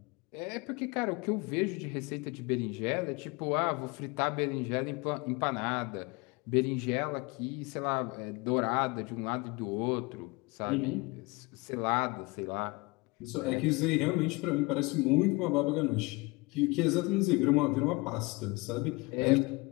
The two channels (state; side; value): quieter; right; 25.4 dB